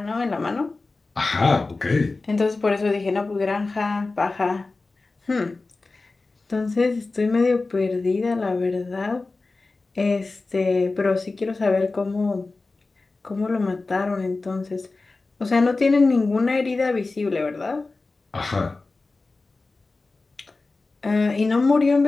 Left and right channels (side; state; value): right; quieter; 3.6 dB